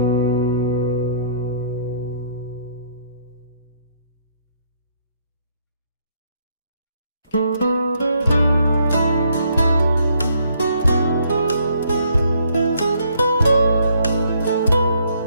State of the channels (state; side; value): inverted; both; correlation -0.69